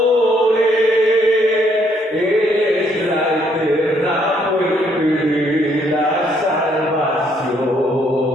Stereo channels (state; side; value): normal; both; correlation 0.69